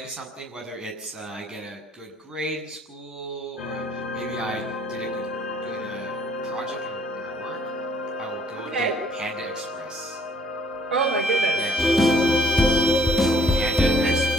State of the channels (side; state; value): both; normal; correlation 0.62